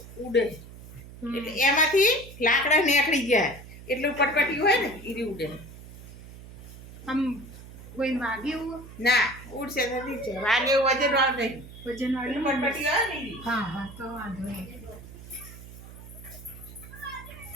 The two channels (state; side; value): noise; right; hum, 16 dB below the sound